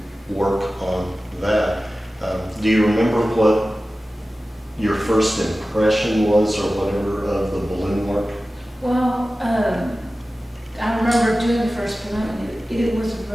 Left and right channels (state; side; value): normal; both; correlation 0.95